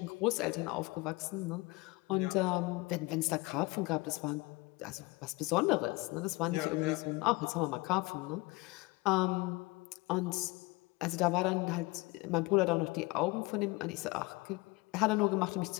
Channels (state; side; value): quieter; right; 23.5 dB